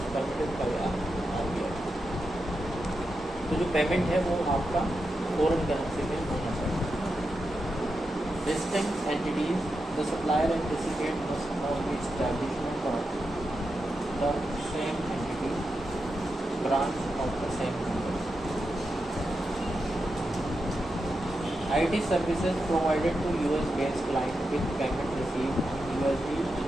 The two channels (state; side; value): normal; both; correlation 0.88